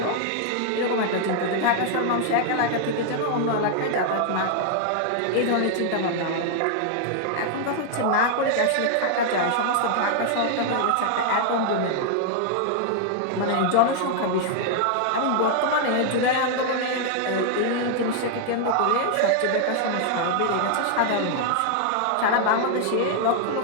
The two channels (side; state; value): both; different; correlation 0.00